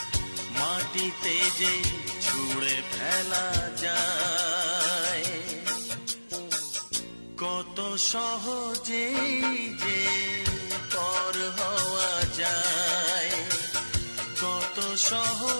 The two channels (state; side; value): inverted; both; correlation -1.00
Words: মাটিতে যে ছুঁড়ে ফেলা যায়। কত সহজেই যে পর হওয়া যায়, কত